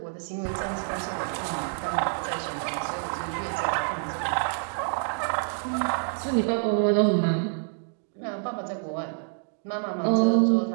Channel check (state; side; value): silent; left; 60 dB below the other